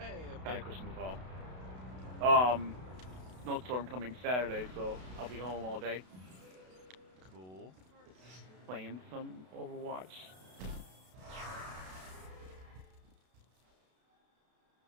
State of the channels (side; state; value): left; late; 32 ms